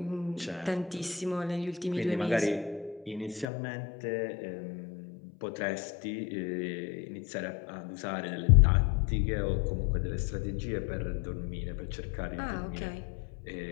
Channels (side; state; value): right; drops out; at 3.5 s